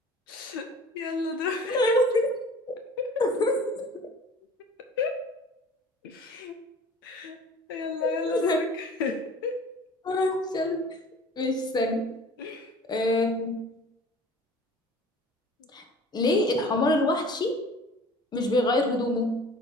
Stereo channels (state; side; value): normal; both; correlation 0.46